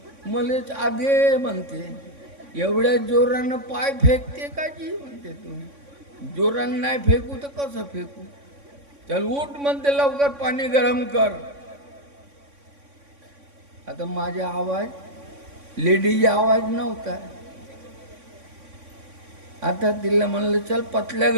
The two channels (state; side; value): late; left; 3.6 ms